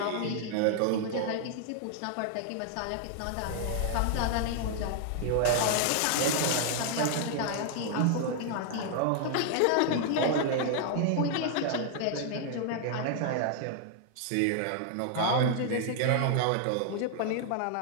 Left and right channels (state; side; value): different; both; correlation 0.00